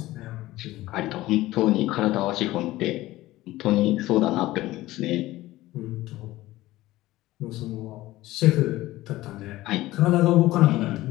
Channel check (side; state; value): right; quieter; 17.1 dB